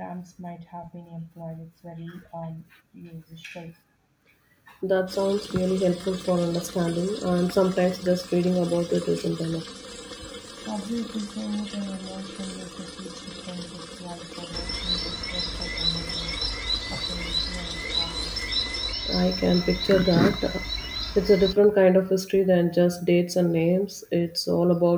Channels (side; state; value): both; identical; correlation 1.00